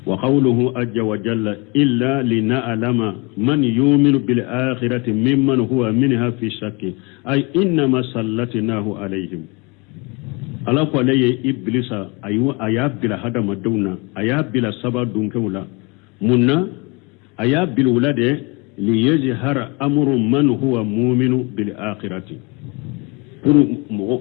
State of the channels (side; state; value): right; quieter; 28.6 dB